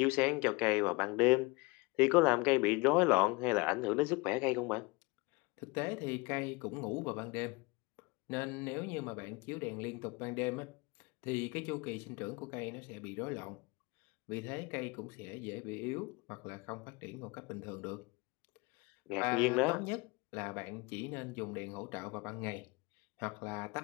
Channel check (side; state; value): right; quieter; 26.0 dB